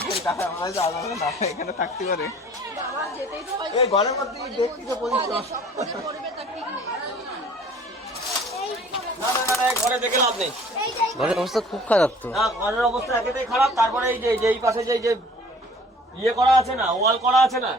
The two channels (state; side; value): normal; both; correlation 0.51